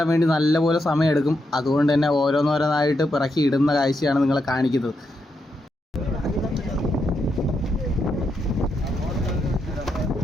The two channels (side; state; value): both; normal; correlation 0.82